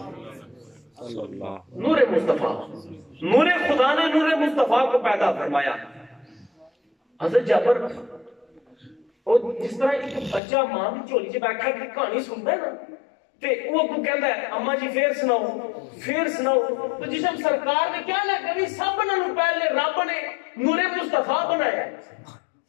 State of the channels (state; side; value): drops out; right; at 10.4 s